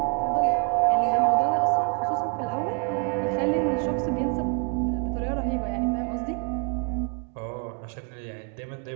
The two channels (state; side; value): quieter; left; 35.2 dB